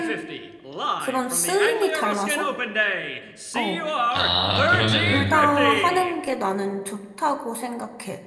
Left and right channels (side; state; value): both; identical; correlation 1.00